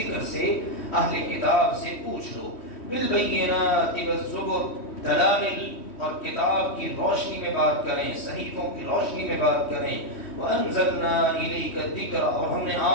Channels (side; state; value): right; late; 3.1 ms